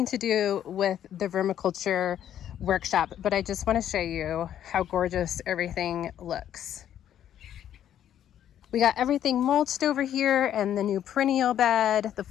to do with the vermiculture workshop, but I just want to show you how gorgeous everything looks. We got everything mulched over here and the new perennial bed. The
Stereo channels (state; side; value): quieter; right; 10.6 dB